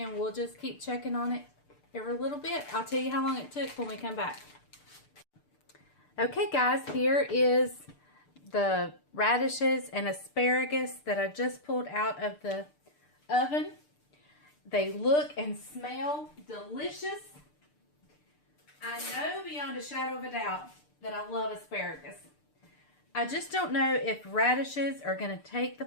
we'll just keep checking on it every little bit. I'll tell you how long it took when we come back. Okay guys, here is the radishes and asparagus that I just pulled out of the oven. They look and smell delicious. I know beyond a shadow of a doubt that I love asparagus. I just don't know if radishes are going to take the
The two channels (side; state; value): right; late; 6.7 ms